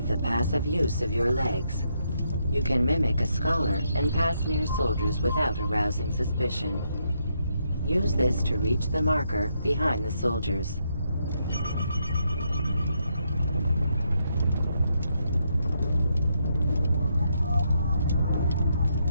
the passive use of your legs. You can mimic a scholar and pass near soldiers without arousing suspicion. Use this to reach the marker behind the soldiers.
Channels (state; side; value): inverted; both; correlation -0.78